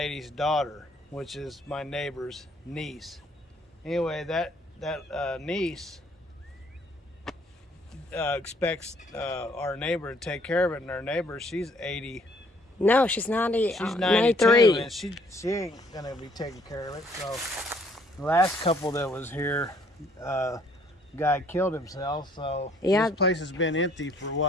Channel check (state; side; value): normal; both; correlation 0.63